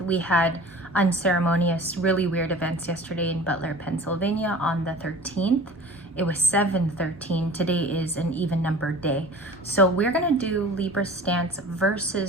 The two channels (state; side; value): normal; both; correlation 0.42